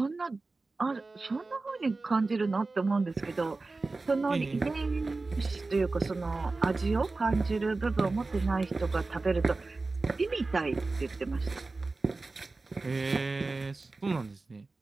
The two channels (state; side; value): quieter; left; 3.5 dB